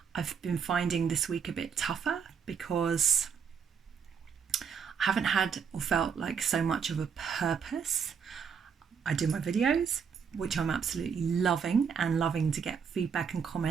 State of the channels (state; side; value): quieter; left; 6.7 dB